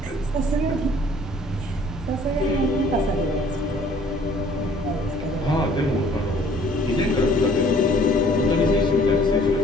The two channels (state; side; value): normal; both; correlation 0.56